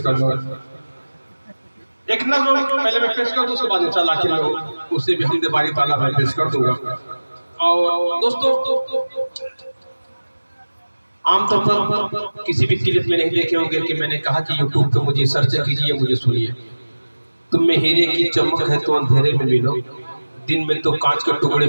कर दो। एक नज़्म पहले मैं पेश कर दूं, उसके बाद इंशाअल्लाह आखिर में उसे भी हमदे बारी ताला मैं पेश कर दूंगा। और दोस्तों आमतौर पर किसी भी क्लिप में नहीं देखे होंगे कि मैंने कहा कि यूट्यूब पे मुझे सर्च कीजिए, मुझे सुनिए। तुम में हीरे की चमक है तो अंधेरे में मिलो, दिन में तो कांच के टुकड़े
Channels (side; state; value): both; inverted; correlation -1.00